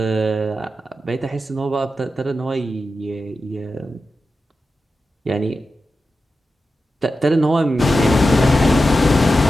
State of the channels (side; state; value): both; normal; correlation 0.91